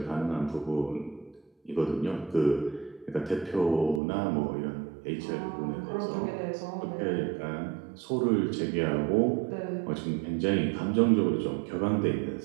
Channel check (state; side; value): drops out; left; at 4.0 s